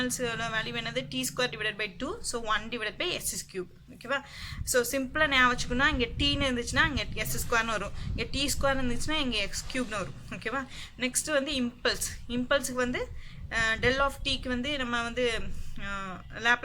வேல்யூ என்னது T square divided by 2, so 1 divided by S cube ஓகேவா. ஸோ சிம்பிளாக ஞாபகம் வச்சுக்கணும், இங்கே டீன்னு இருந்துச்சுன்னா இங்கே எஸ் ஸ்கொயர்னு வரும், இங்கே டி ஸ்கொயர் இருந்துச்சுன்னா இங்கே எக்ஸ் கியூப்னு வரும் ஓகேவா. நெக்ஸ்ட் வந்து இம்பல்ஸுக்கு வந்து டெல் ஆஃப் டீக்கு வந்து நம்ம வந்து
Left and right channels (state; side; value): identical; both; correlation 1.00